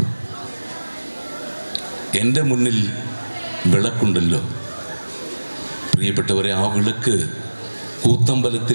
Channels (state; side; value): inverted; both; correlation -1.00